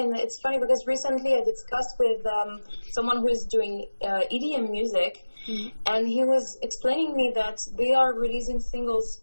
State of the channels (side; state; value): both; inverted; correlation -1.00